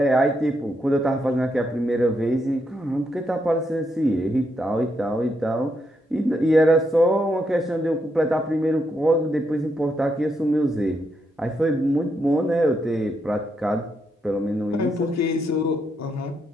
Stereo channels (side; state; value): both; normal; correlation 0.80